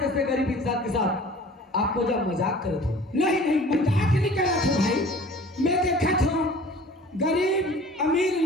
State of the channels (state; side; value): normal; both; correlation 0.46